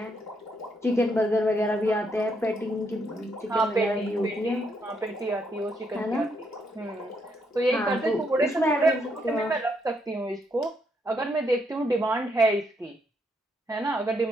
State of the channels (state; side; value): normal; both; correlation 0.75